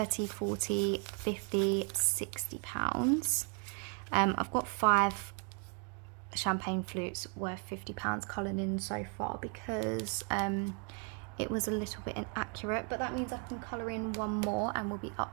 40, 50, 60 pounds. I've got 5 champagne flutes worth £50 coloured in so far because it was a little bit inaccurate, but that means I can colour in one more and we'll be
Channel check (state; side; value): quieter; left; 37.5 dB